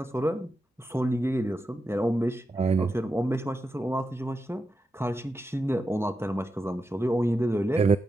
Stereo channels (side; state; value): both; normal; correlation 0.88